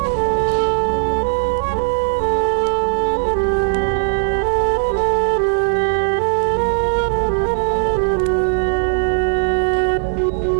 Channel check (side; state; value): left; silent; digital silence